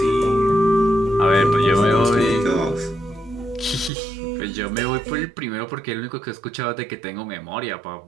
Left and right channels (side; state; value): left; drops out; at 3.9 s